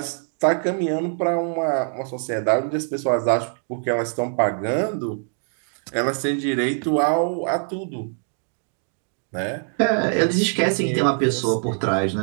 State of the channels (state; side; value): silent; left; 56 dB below the other